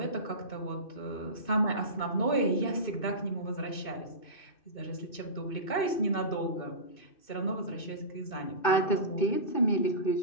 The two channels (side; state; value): right; late; 2.6 ms